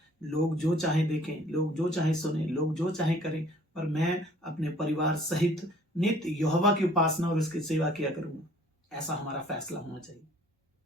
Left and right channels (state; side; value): normal; both; correlation 0.55